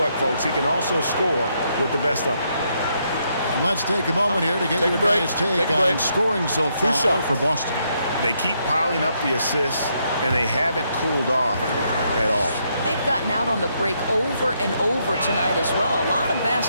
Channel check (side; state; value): both; inverted; correlation -0.76